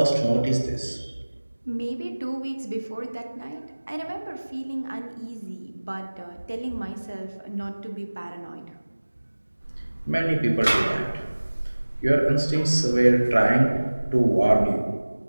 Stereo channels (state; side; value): inverted; both; correlation -1.00